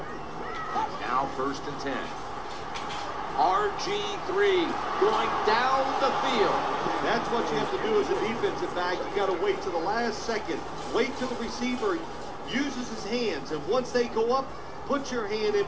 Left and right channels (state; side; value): identical; both; correlation 1.00